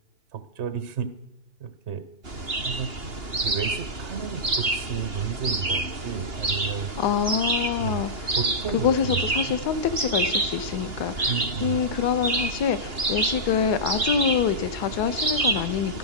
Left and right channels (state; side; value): late; left; 2.8 ms